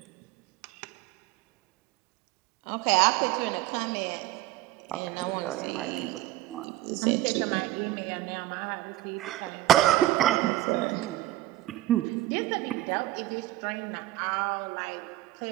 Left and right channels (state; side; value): quieter; left; 15.8 dB